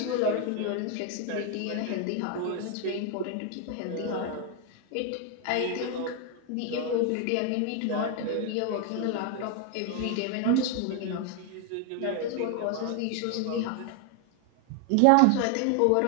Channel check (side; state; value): both; different; correlation 0.01